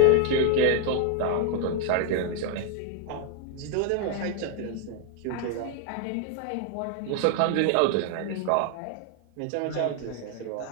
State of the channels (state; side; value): different; both; correlation 0.00